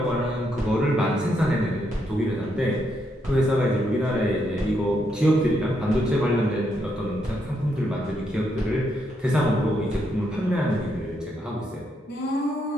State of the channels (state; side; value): normal; both; correlation 0.78